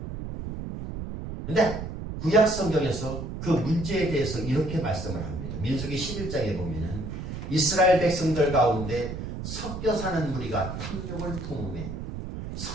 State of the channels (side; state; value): right; noise; rumble, 7 dB below the sound